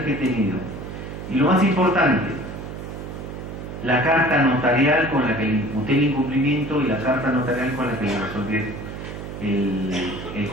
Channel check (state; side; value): noise; right; hum, 9 dB below the sound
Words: que he tenido, y lo más importante, la carta notarial con la que le imputé el incumplimiento y la carta notarial con la que le resolví el